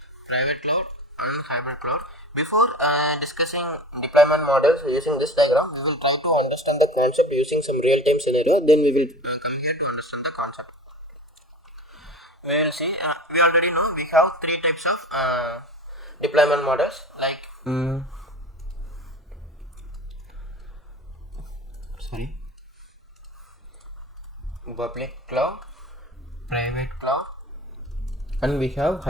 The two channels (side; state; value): both; normal; correlation 0.36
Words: private cloud, and hybrid cloud. Before discussing deployment models using this diagram, we will try to understand the concept using some real-time scenario. Then we will come here to understand the concept. We will see. We already know we have three types of deployment models like. Public cloud, private cloud, and we have